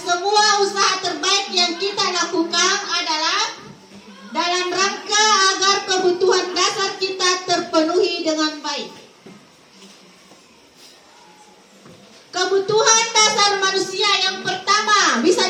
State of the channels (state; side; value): identical; both; correlation 1.00